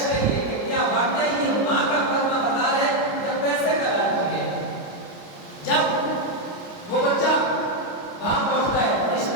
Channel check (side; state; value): right; late; 29 ms